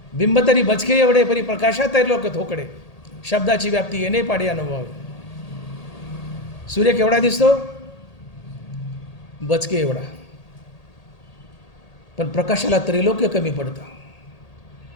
बिंब तरी बचके एवढे परी प्रकाशात लोक थोकडे. शब्दाची व्याप्ती येणे पाडे अनुभवावे. सूर्य केवढा दिसतो? बचके एवढा. पण प्रकाशाला त्रैलोक्य कमी पडतं.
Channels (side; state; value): right; late; 1.8 ms